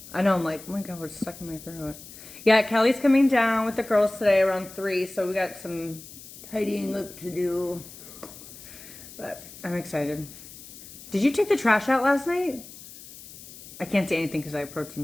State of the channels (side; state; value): left; noise; hiss, 17 dB below the sound